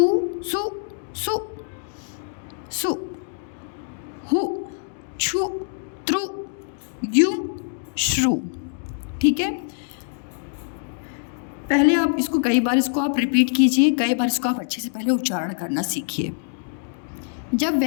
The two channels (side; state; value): right; silent; 62 dB below the other